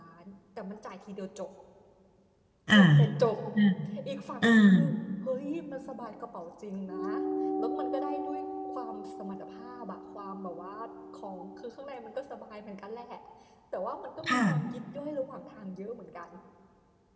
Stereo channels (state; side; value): identical; both; correlation 1.00